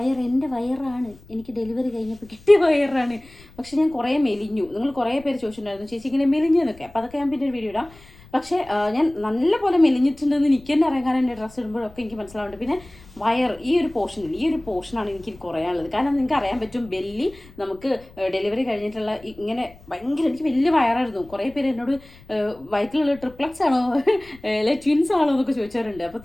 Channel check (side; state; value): left; noise; rumble, 23 dB below the sound